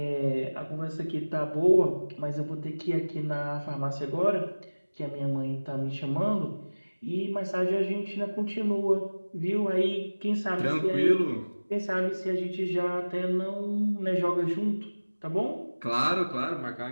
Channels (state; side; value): inverted; both; correlation -1.00